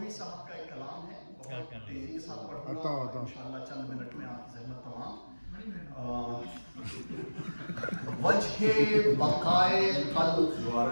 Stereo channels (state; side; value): inverted; both; correlation -1.00